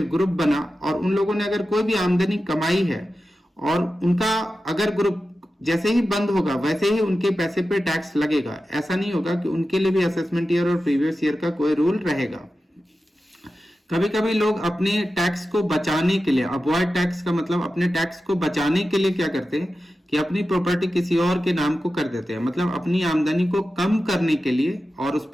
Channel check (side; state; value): both; normal; correlation 0.92